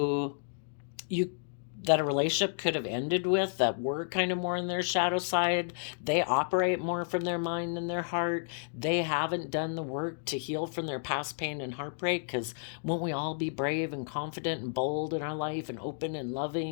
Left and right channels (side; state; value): right; silent; digital silence